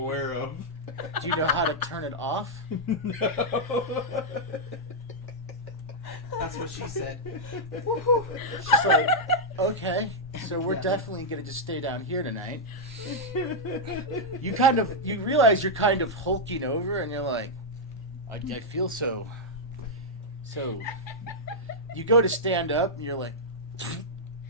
of. Do you know how to turn it off? No. That's what she said. She's like, okay, so we're Yeah. definitely going to just stay down here tonight. You realize you're kind of hulking over, and you're like, I feel so. You go to stand up, and you're like,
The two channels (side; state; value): both; normal; correlation -0.06